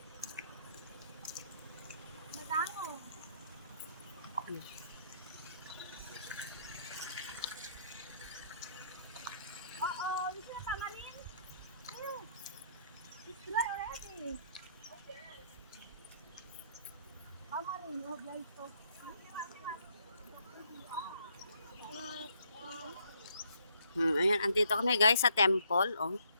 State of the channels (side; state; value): both; inverted; correlation -0.68